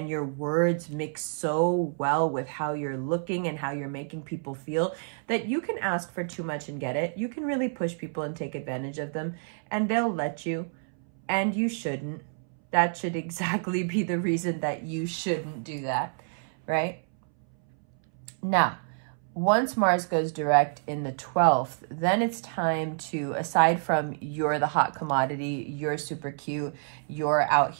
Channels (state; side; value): silent; left; 59 dB below the other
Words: your words mix so well with how you're looking and how you're making people feel that you can ask for too much and get it. You can really push people and take advantage of them and they'll let you, and you shouldn't. That should exactly be the reason that you shouldn't do that, right? Now, once Mars goes direct in the 12th, then it's time to, aside from you're the hot commodity, you're super cute, you're out